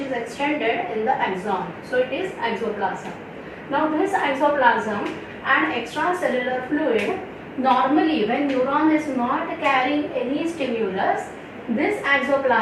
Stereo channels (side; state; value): both; identical; correlation 1.00